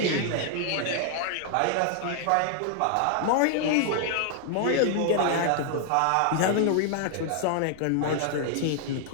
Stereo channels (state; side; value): different; both; correlation 0.00